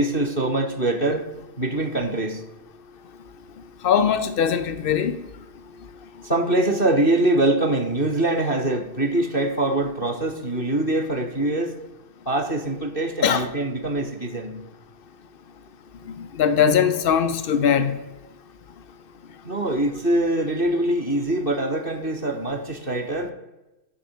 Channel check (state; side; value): late; right; 2.6 ms